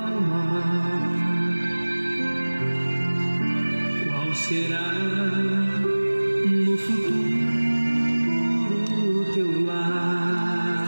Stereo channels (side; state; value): both; inverted; correlation -1.00